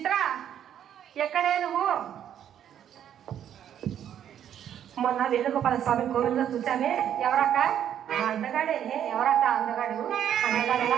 ఎక్కడే నువ్వు? మొన్న వేణుగోపాల స్వామి కోవిల్లో చూచానే. ఎవరక్క? అందగాడే. ఎవరక్క అందగాడు? అందగాడు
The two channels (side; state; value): left; quieter; 9.9 dB